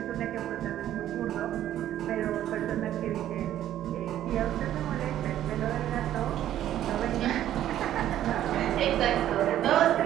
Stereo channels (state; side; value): quieter; left; 12.1 dB